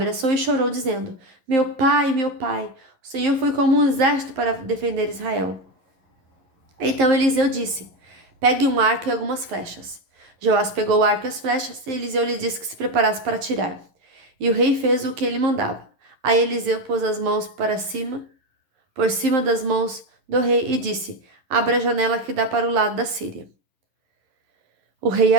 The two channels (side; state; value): left; late; 11 ms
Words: e chorou, dizendo: meu pai, o Senhor foi como um exército para defender Israel. Então Eliseu disse: pegue um arco e algumas flechas. Joás pegou o arco e as flechas, e Eliseu lhe disse que se preparasse para atirar. E o rei fez o que ele mandava. Aí Eliseu pôs as mãos para cima, por cima das mãos do rei, e disse: abra a janela que dá para o lado da Síria. O rei